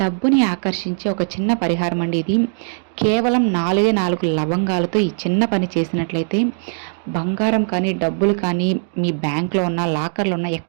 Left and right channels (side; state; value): left; silent; 66 dB below the other